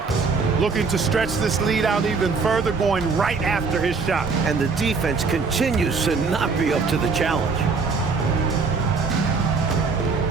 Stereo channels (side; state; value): left; quieter; 4.6 dB